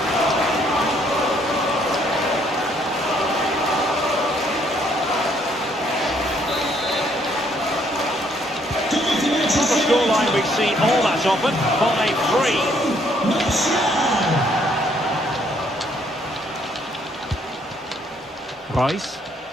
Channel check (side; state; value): both; normal; correlation 0.67